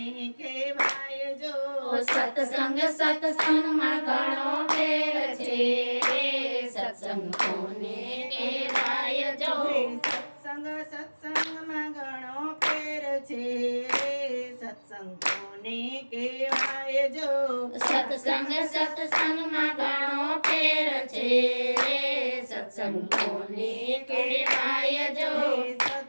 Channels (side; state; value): both; inverted; correlation -1.00